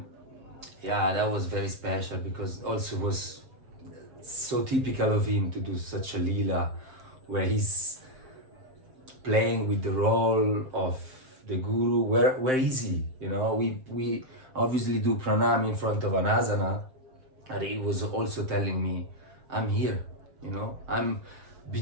yeah, that was very special, because also was so typical of him to do such a lila, where he's playing with the role of the guru. Where is he? You know, we obviously do pranam in front of an asana, and he was also telling me, I'm here, you know, I'm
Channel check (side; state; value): left; late; 7.6 ms